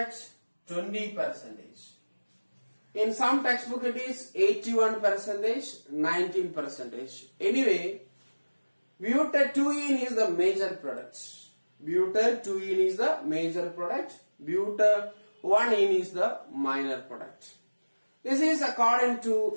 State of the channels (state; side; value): inverted; both; correlation -1.00